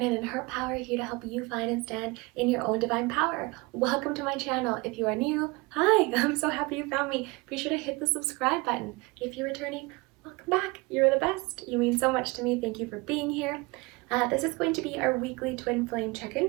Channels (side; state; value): left; quieter; 25.3 dB